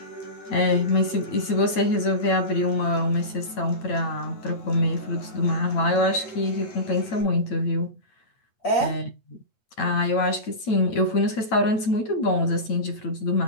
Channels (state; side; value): late; right; 9.0 ms